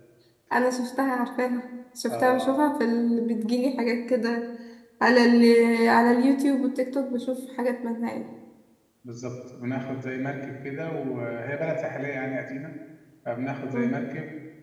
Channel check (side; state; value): both; identical; correlation 1.00